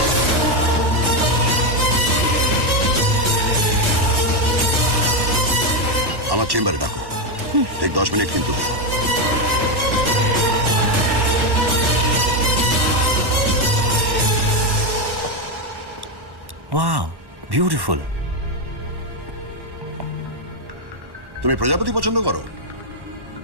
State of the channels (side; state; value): left; late; 1.1 ms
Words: আমার চেম্বারে ডাকো, ঠিক 10 মিনিট কিন্তু। Wow, beautiful. তুমি প্রজাপতি পছন্দ করো?